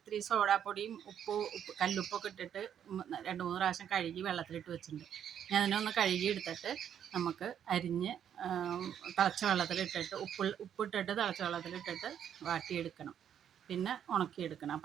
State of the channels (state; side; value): quieter; left; 9.2 dB